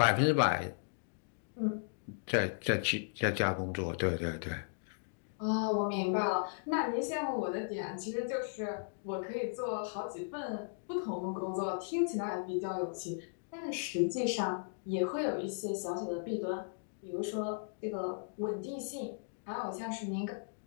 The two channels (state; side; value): silent; right; digital silence